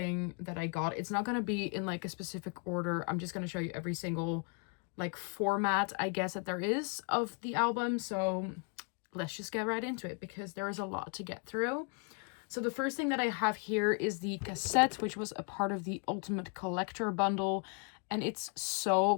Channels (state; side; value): quieter; right; 35.8 dB